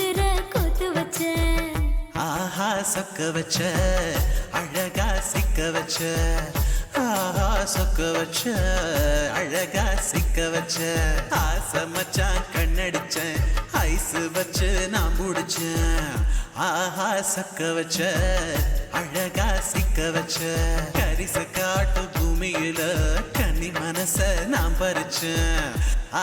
கொத்து வச்ச ஆஹா சொக்க வச்ச அழகா சிக்க வச்ச ஆஹா சொக்க வச்ச அழகா சிக்க வச்ச ஆசை மச்சான் கண்ணடிச்சேன் ஐஸ் வச்சு நான் முடிச்சேன் ஆஹா சொக்க வச்ச அழகா சிக்க வச்ச கரிச காட்டு பூமியில கன்னி மனச நான் பறிச்சேன்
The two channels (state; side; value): identical; both; correlation 1.00